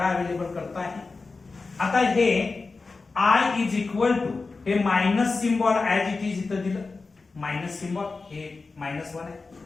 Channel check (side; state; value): right; quieter; 4.0 dB